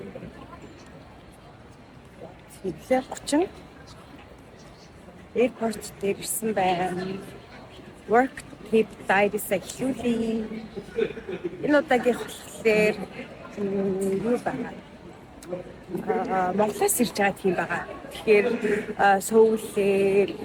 хэвлээ 30 airport дээр ирсэн байна. Work trip diary-с эхлүүлээ. Энэ удаагийн болохоор юу байна? Монголоос ирж байгаа тийм байгаа. Тэгэхээр Сөүлээр,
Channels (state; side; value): identical; both; correlation 1.00